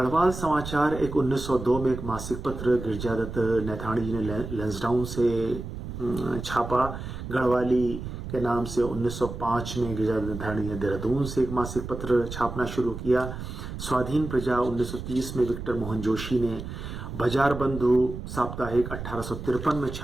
समाचार एक 1902 में एक मासिक पत्र गिरजादत्त नैथानी जी ने लैंसडाउन से छापा। गढ़वाली के नाम से 1905 में गिरजादत्त नैथानी ने देहरादून से एक मासिक पत्र छापना शुरू किया। स्वाधीन प्रजा 1930 में विक्टर मोहन जोशी ने, बाजार बंधु साप्ताहिक 1853 में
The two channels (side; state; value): right; noise; rumble, 8 dB below the sound